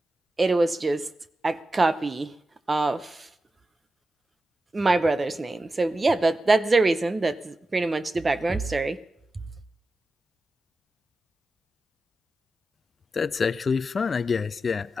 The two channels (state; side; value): normal; both; correlation 0.92